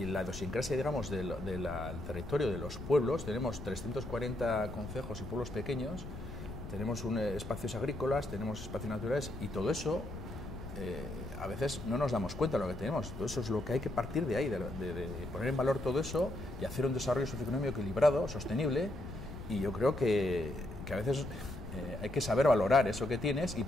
la idiosincrasia, digamos, del territorio de los pueblos. Tenemos 340 concejos y pueblos pequeños, tenemos espacios agrícolas, tenemos espacios naturales, y todo eso a veces no nos damos cuenta de lo que tenemos. Todo eso es lo que hay que partir de ahí, de poner en valor todo eso y hacer un desarrollo socioeconómico equilibrado, sostenible, y yo creo que a veces hay que saber valorar eso que tienes y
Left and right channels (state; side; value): noise; left; rumble, 10 dB below the sound